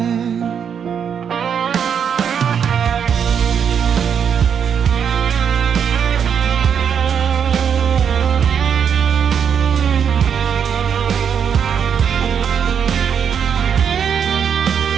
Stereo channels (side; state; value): left; quieter; 7.6 dB